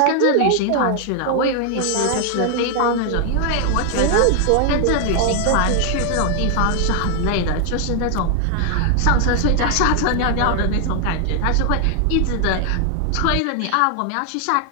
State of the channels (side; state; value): both; different; correlation 0.00